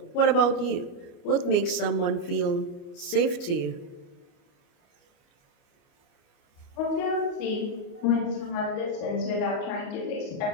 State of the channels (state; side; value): late; right; 29 ms